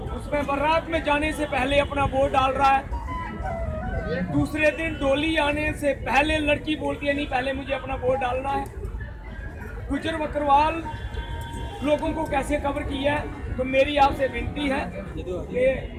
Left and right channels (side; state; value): both; identical; correlation 1.00